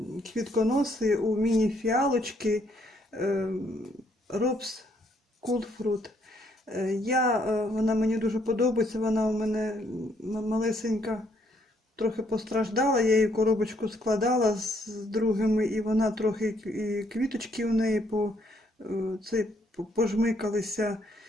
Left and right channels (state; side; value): normal; both; correlation 0.70